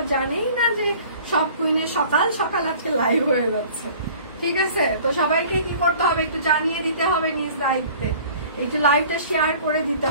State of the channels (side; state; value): both; inverted; correlation -0.48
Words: জানেই না যে সব কুইনে সকাল সকাল আজকে লাইভ হয়ে যাচ্ছে। ঠিক আছে, তো সবাইকে কি করতে হবে একটু জানিয়ে দিতে হবে নিজ দায়িত্বে, একটু লাইভটা শেয়ার করে দিতে